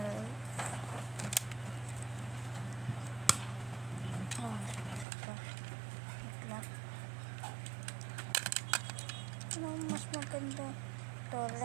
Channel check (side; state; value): left; drops out; at 5.1 s